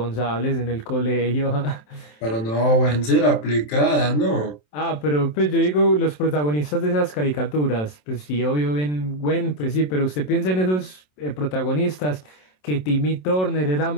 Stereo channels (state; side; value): late; right; 27 ms